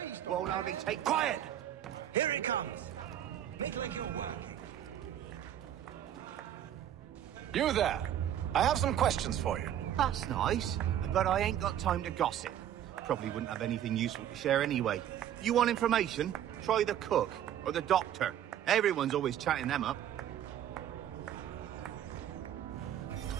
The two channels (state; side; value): quieter; left; 10.8 dB